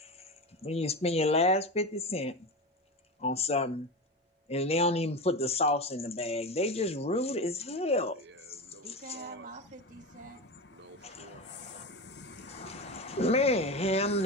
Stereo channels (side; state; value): both; normal; correlation 0.23